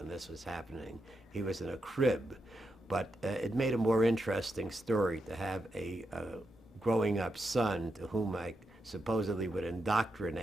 this was happening. He was in a crib. But it made a more interesting story to have a growing up son to whom I supposedly would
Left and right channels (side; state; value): both; normal; correlation 0.85